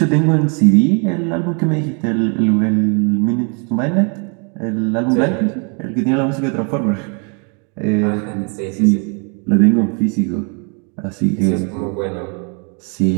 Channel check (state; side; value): quieter; left; 37.0 dB